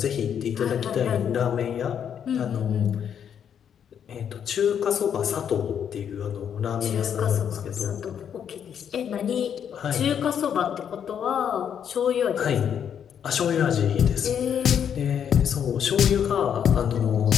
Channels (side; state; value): right; quieter; 8.5 dB